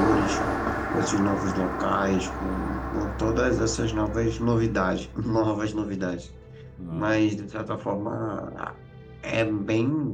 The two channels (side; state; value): both; identical; correlation 1.00